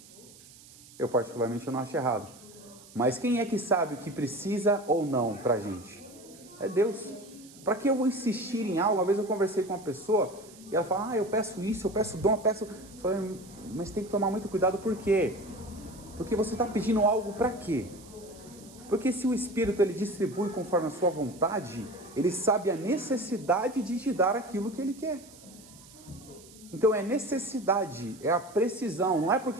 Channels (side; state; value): right; noise; hiss, 21 dB below the sound